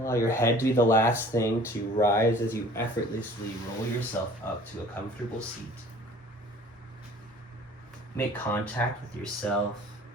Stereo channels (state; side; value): normal; both; correlation 0.49